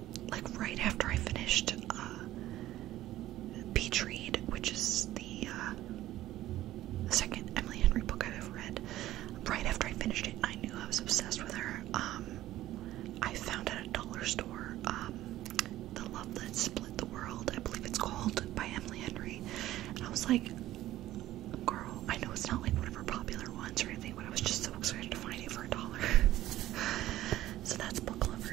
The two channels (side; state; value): left; quieter; 14.6 dB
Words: Like right after I finished Beach Read, which is the second Emily Henry book I've ever read. Right after I finished it, I knew I was obsessed with her. I found at a dollar store The Love That Split the World, I believe it's called, by Emily Henry, and I was like, girl, I know it's not like one of her popular ones or anything, but I was just so excited to find it for $1. So that's Book